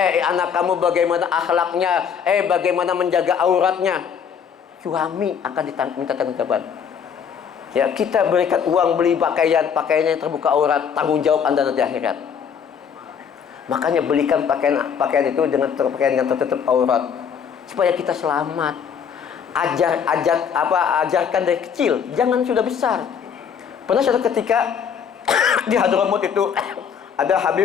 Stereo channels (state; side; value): quieter; right; 7.3 dB